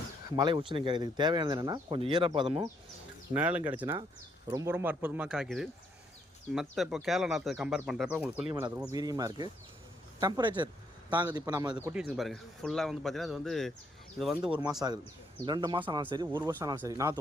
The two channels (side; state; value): both; normal; correlation 0.72